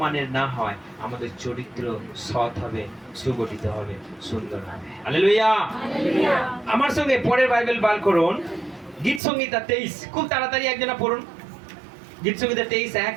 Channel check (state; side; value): drops out; left; at 9.2 s